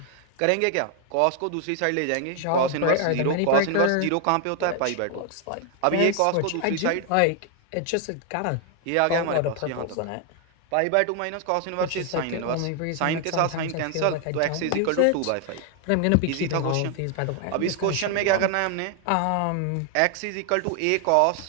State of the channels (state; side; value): different; both; correlation 0.00